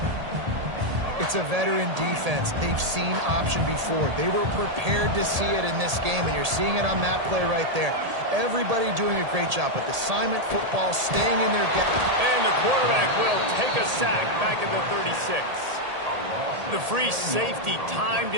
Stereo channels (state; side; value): late; left; 1.8 ms